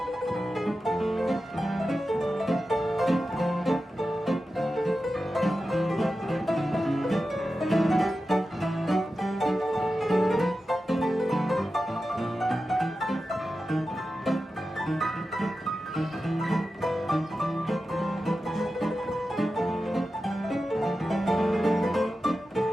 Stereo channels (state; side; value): normal; both; correlation 0.92